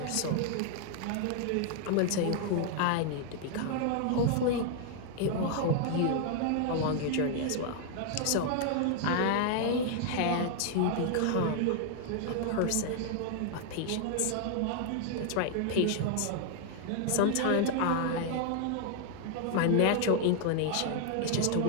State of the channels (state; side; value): different; both; correlation 0.00